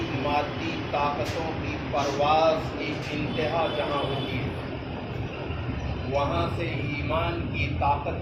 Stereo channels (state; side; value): identical; both; correlation 1.00